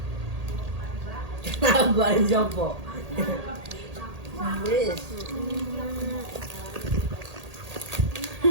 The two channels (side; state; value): left; late; 1.8 ms